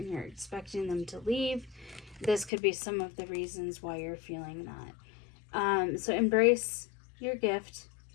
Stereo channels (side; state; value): right; drops out; at 2.5 s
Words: you're expecting them to leave, this could be some of the reasons why you're feeling that. So embrace your gift,